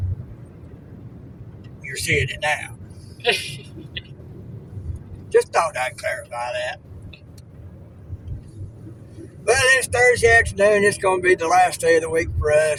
You're seeing it now. Just thought I'd clarify that. Well, it's Thursday afternoon. It's going to be the last day of the week for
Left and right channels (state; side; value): identical; both; correlation 1.00